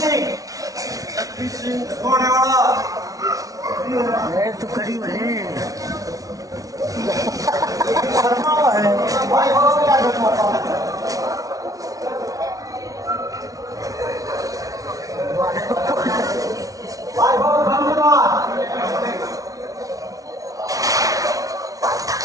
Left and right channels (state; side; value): late; left; 0.17 ms